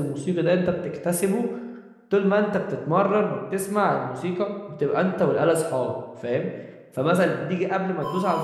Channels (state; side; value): identical; both; correlation 1.00